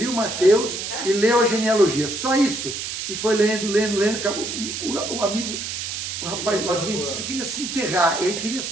Mateus e leu a genealogia. Só isso. E foi lendo, acabou. O amigo, o rapaz do Adventista queria se enterrar. Ele queria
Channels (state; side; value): noise; right; hiss, 5 dB below the sound